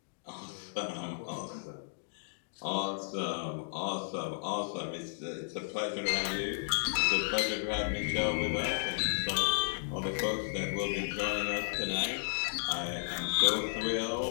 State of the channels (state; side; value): silent; right; digital silence